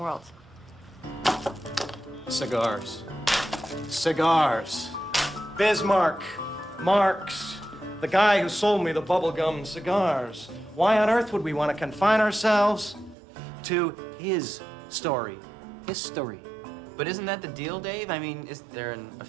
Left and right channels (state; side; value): drops out; left; at 13.2 s